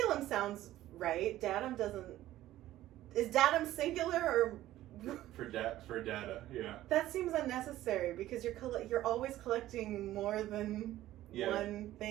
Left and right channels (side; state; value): left; quieter; 14.5 dB